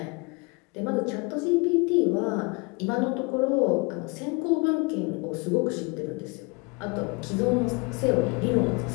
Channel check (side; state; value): right; quieter; 29.7 dB